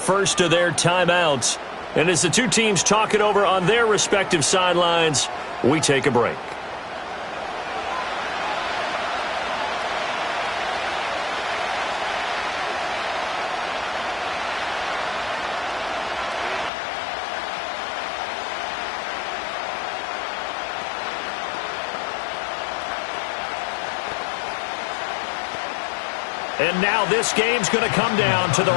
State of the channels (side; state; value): right; drops out; at 16.7 s